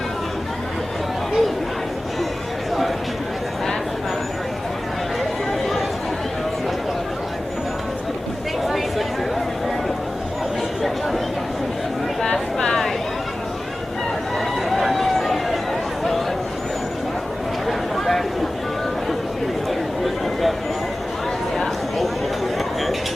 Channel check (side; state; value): both; normal; correlation 0.96